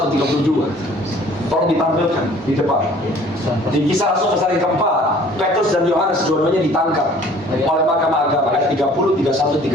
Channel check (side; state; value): both; normal; correlation 0.52